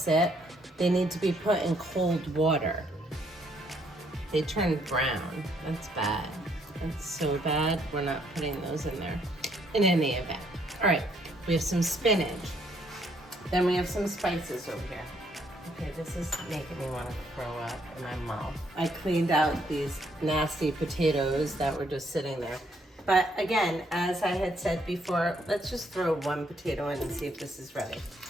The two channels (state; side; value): normal; both; correlation 0.70